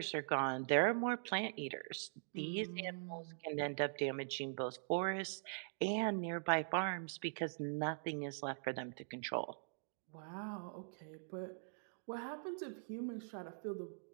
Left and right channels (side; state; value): left; silent; digital silence